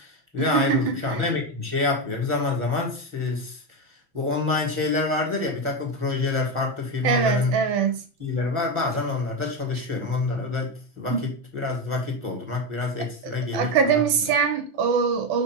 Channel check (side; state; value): left; late; 6.1 ms